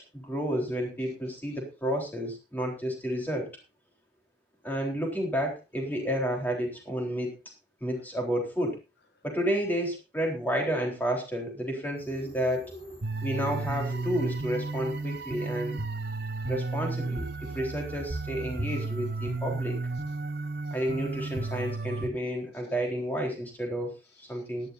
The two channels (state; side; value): normal; both; correlation 0.69